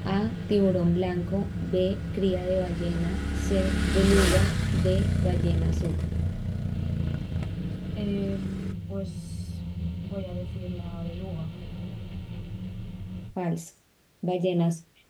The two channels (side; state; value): both; identical; correlation 1.00